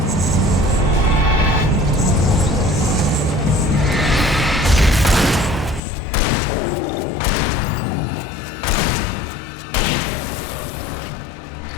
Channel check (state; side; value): drops out; right; at 5.8 s